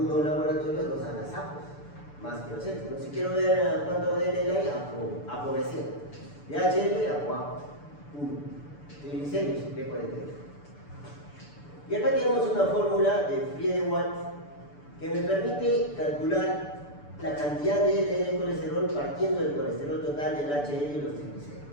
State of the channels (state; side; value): late; right; 6.9 ms